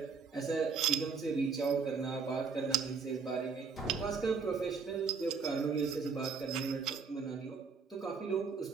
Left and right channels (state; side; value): quieter; left; 5.3 dB